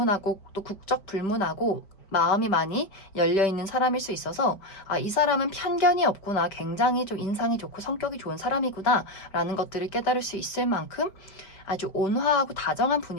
또 국적 불문하고 마음이 많이 열려있는 사람일 수 있어서 이 사람은 편견이 없구나, 굉장히 좀 인상이 좋고 성격이 좋은 사람이구나 라는 것들을 깨달을 수 있을 만큼 아주 온화하고 다정한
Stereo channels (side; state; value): right; late; 5.2 ms